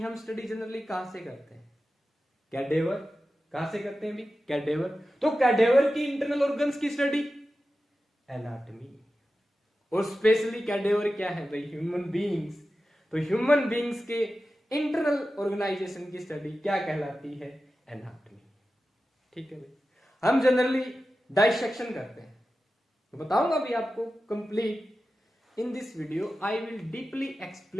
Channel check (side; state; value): both; normal; correlation 0.93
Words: हम स्टडी जनरली कहां से करते हैं? कैडेवर। कहां से करते हैं भी? कैडेवर। तो कैडेवर की इंटरनल ऑर्गन्स की स्टडी एनाटॉमी। और स्पेशली कैडेवर क्या है भाई? Human beings. तो ह्यूमन बीइंग्स के इंटरनल ऑर्गेनाइजेशन की स्टडी क्या कहलाती है? एनाटॉमी। ठीक है भाई। हम जनरली डाइसेक्शन करते हैं, तो बताऊंगा भी आपको complete in this video. I will deeply